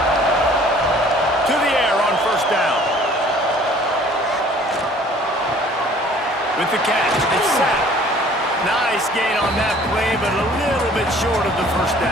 To the air on first down. With the catch, it's sacked. Nice gain on that play, but a little bit short of the first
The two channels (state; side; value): normal; both; correlation 0.53